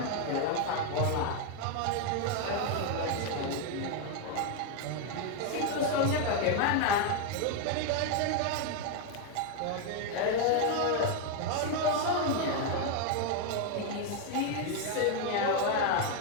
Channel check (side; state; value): both; different; correlation 0.01